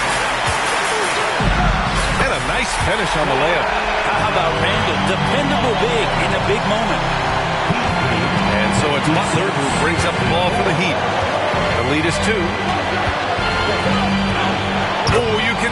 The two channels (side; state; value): both; identical; correlation 1.00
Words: And a nice finish on the layup. How about Randle? Dependable big in a big moment. And so it's Butler who brings up the ball for the Heat. The lead is 2. Oh, you can